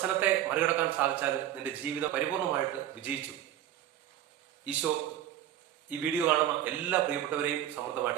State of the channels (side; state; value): left; quieter; 11.8 dB